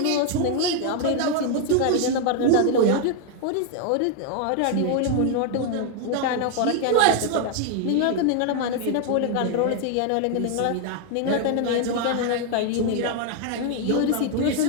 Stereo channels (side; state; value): both; different; correlation 0.00